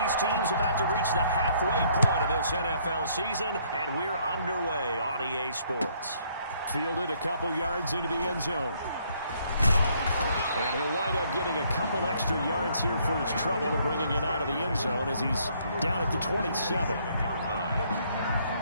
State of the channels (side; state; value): both; inverted; correlation -0.66